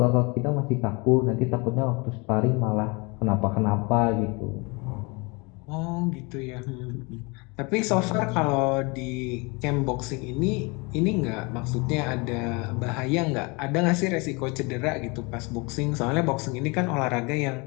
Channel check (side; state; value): right; quieter; 28.3 dB